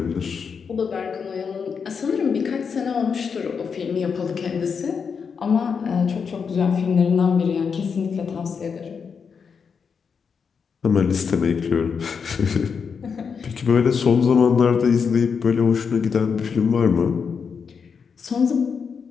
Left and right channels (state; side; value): quieter; right; 6.1 dB